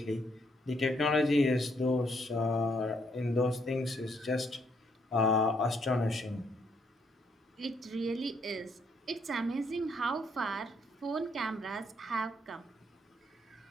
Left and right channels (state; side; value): normal; both; correlation 0.72